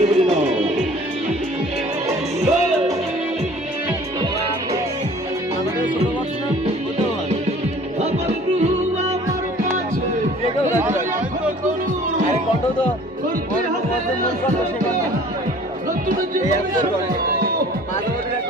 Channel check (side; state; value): both; normal; correlation 0.50